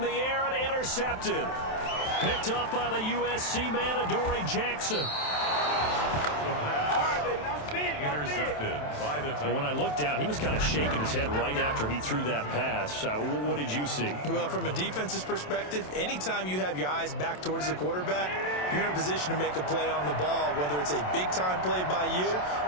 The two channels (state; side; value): late; right; 27 ms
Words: the air and intercepted. Picked up by the USC man, Adoree Jackson. Intercepted by the Titans. When I looked down, he was kind of shaking his head right after he threw that pass. What did you see? Well, from a defense's perspective, anytime you have your eyes back towards the quarterback, you're in a position to make a play on the ball, whether it's a big-time play by you